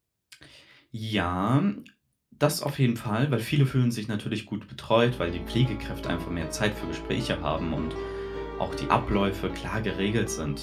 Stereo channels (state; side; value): identical; both; correlation 1.00